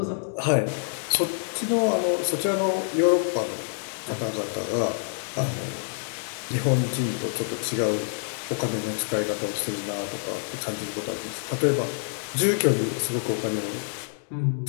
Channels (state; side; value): silent; right; digital silence